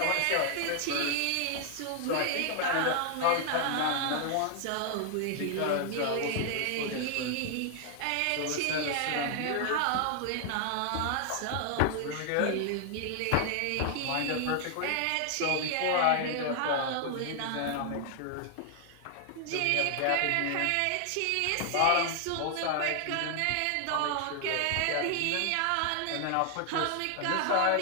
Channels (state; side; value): different; both; correlation 0.00